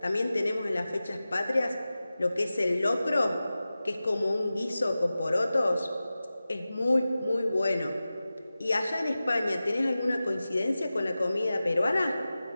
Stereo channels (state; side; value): inverted; both; correlation -0.95